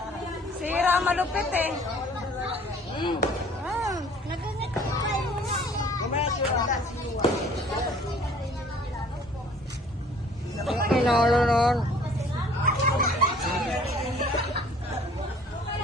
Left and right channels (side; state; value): both; normal; correlation 0.54